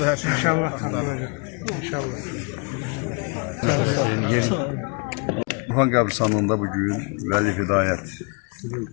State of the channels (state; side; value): quieter; right; 33.5 dB